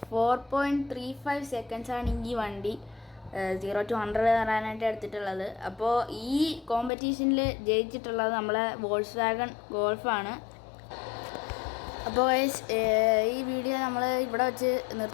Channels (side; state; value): right; drops out; at 6.9 s